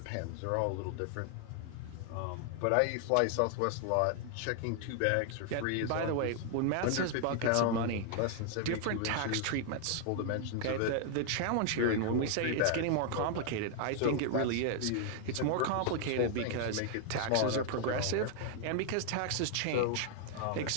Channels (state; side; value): different; both; correlation 0.00